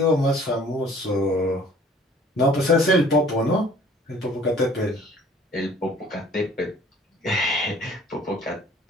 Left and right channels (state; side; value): normal; both; correlation 0.53